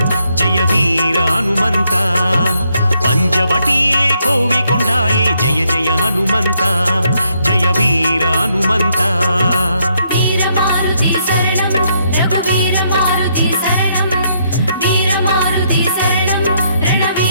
ಜಯ ವೀರ ಹನುಮಂತ ಪಂಚವಟಿಯೇ ಕೋವಿಕೊಂಡಾಯೇ ಜಯ ಜಯ ಹನುಮಂತ ಜಯ ವೀರ ಹನುಮಂತ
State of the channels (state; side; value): inverted; both; correlation -0.74